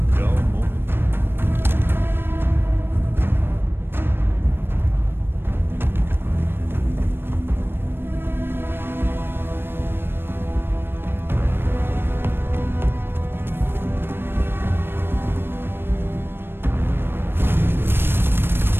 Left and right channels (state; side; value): late; left; 0.10 ms